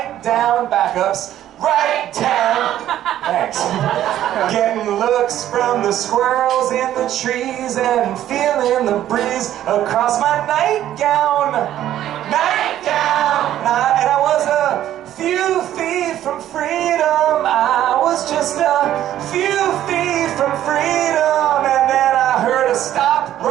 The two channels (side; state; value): left; quieter; 12.2 dB